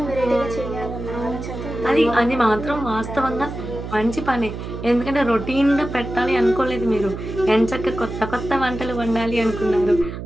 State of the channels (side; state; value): right; noise; hum, 8 dB below the sound